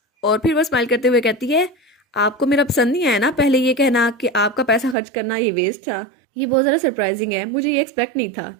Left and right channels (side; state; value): left; drops out; at 5.0 s